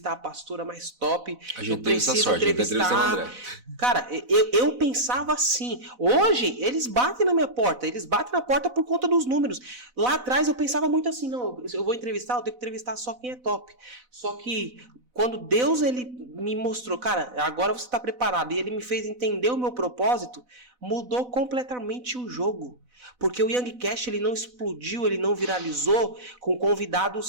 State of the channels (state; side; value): late; left; 4.0 ms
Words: a pastora mais top, eu preciso entrevistar... Cara, eu pensava assim. Hoje, eles batem na minha porta, eles batem na porta por conta dos números. Lá atrás eu pensava muito assim, não, eu vou entrevistar, eu tenho que entrevistar só quem é top. Só que quando Deus ele me mostrou, cara, agora você está preparado, e ele me fez entender o meu propósito, mudou completamente o jogo. Porque o Youngcast ele não explodiu, ele não viralizou com